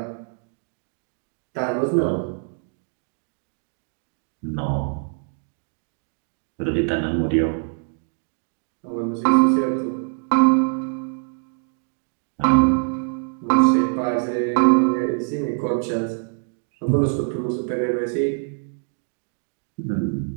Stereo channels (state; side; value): silent; left; 58 dB below the other